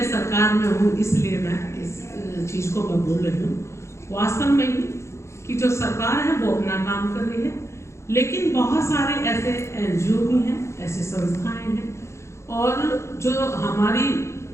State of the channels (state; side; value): late; right; 0.13 ms